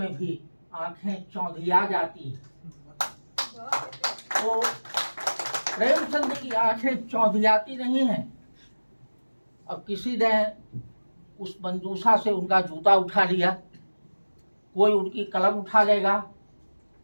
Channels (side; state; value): both; inverted; correlation -1.00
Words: भी आंखें चौंधिया जाती हैं। तो प्रेमचंद की आंखें चौंधियाती नहीं हैं। अब किसी ने उस मंजूषा से उनका जूता उठा लिया, कोई उनकी कलम उठा लेगा,